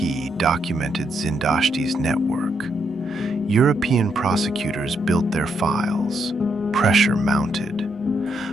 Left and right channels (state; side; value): normal; both; correlation 0.77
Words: documented Zindashti's network. European prosecutors built their files. Pressure mounted.